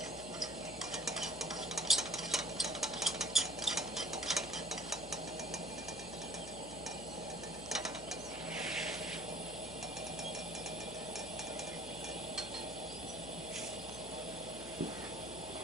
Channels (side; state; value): left; noise; hum, 15 dB below the sound